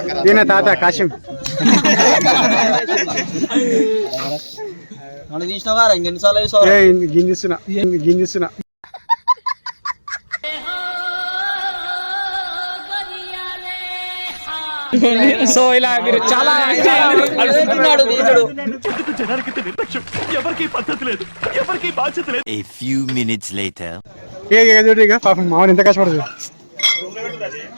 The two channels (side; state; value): both; inverted; correlation -1.00